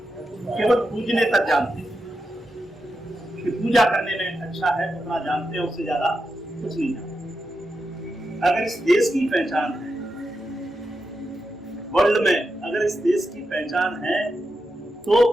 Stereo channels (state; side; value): normal; both; correlation 0.88